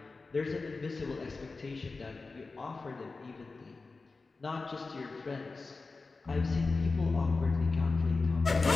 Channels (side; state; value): right; quieter; 3.9 dB